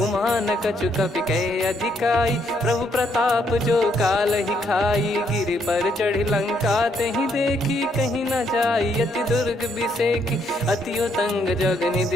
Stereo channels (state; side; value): normal; both; correlation 0.72